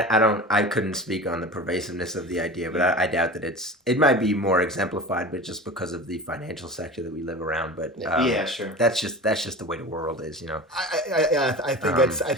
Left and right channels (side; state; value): both; normal; correlation 0.34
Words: couldn't speak on the pervasiveness of the idea, but I doubt that it might be more exemplified, but just because of the financial sector that we live around. But yeah, sure. That's just the way the world is, I think